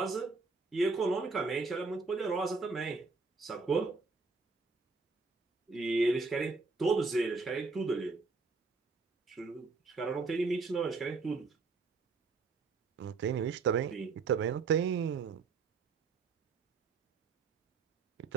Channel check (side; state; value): left; quieter; 4.3 dB